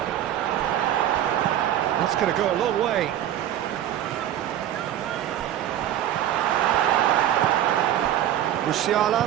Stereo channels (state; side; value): quieter; left; 11.6 dB